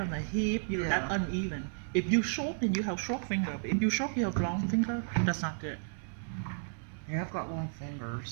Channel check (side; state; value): left; silent; 56 dB below the other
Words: the hip. That Yeah. uneven. If you short, then you have short finger. But if you short, you have long finger. That's not good. Yeah, I've got long